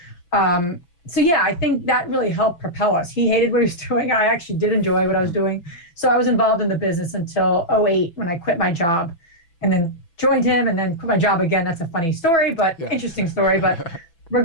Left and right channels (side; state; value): right; late; 6.0 ms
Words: I think that really helped propel us. He hated what he was doing. I actually did enjoy what I was doing. So I was involved in the business until 2008 when I quit my job and then joined him and then quit my job again. That's a funny story, but interesting story. But